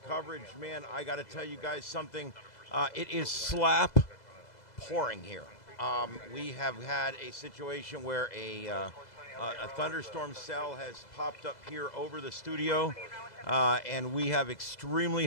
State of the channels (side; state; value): right; late; 2.0 ms